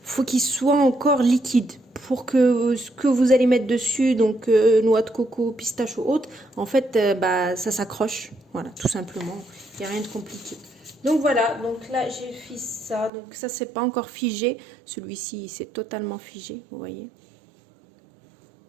faut qu'il soit encore liquide pour que ce que vous allez mettre dessus, donc noix de coco, pistache ou autre, en fait ça s'accroche, voilà tout simplement, il n'y a rien de compliqué. Donc voilà, donc là j'ai fait ça, donc ça c'est pas encore figé, celui-ci c'est totalement figé, vous voyez,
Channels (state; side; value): drops out; left; at 13.1 s